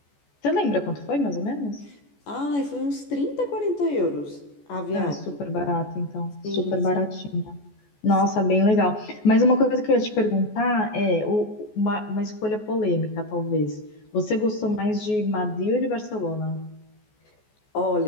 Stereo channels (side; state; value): right; late; 14 ms